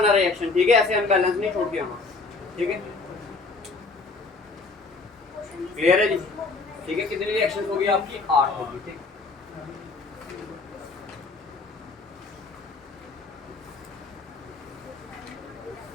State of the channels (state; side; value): quieter; right; 3.9 dB